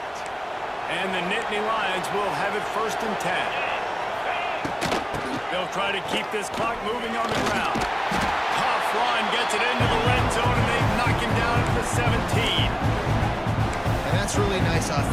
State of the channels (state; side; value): identical; both; correlation 1.00